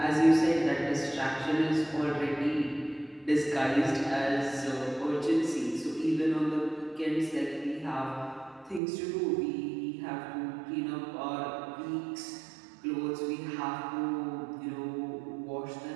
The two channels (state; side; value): drops out; left; at 8.8 s